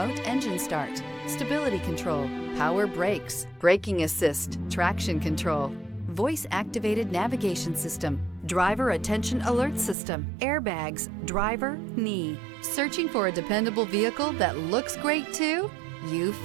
engine start, stability control, power brakes, braking assist, traction control, voice-activated navigation system, driver attention alert system, airbags, driver, knee. Searching for a dependable vehicle that looks great too? You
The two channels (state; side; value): drops out; left; at 10.0 s